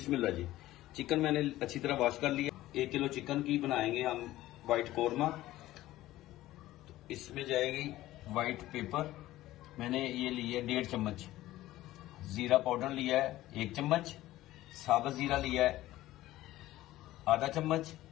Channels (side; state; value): right; quieter; 15.8 dB